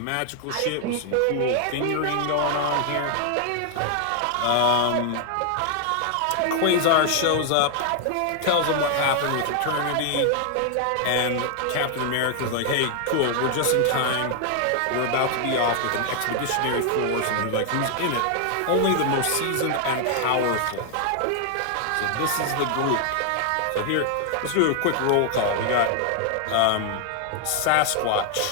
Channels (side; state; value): both; different; correlation 0.00